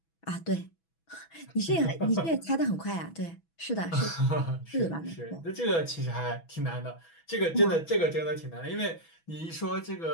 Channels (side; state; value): right; late; 6.1 ms